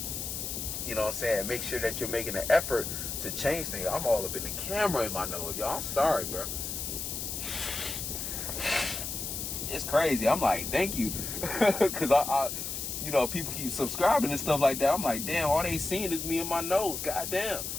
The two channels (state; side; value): noise; left; hiss, 5 dB below the sound